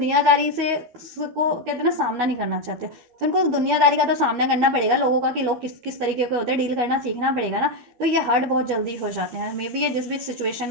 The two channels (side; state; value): left; late; 13 ms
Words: से को कहते हैं ना, सामना नहीं करना चाहते, तो इनको दुनियादारी का तो सामना करना पड़ेगा, लोगों का, कि लोग किस किस तरीके के होते हैं, डील करना सीखना पड़ेगा ना, तो ये हर्ट बहुत जल्दी हो जाते हैं। मे बी ये जिस भी सिचुएशन